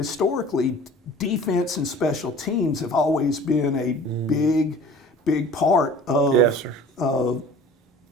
defense and special teams have always been a big part of, of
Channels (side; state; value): both; normal; correlation 0.45